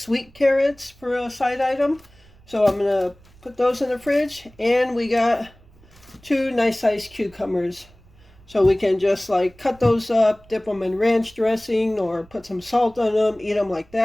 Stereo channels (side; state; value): right; noise; rumble, 27 dB below the sound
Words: carrots for a side item, so I'm gonna put those in the fridge. And we got 2 nice sized cucumbers. So we can just like cut those up, dip them in ranch dressing, or put some salt on them, eat them like